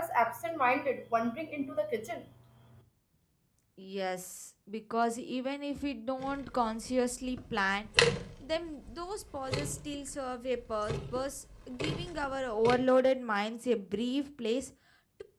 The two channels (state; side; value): identical; both; correlation 1.00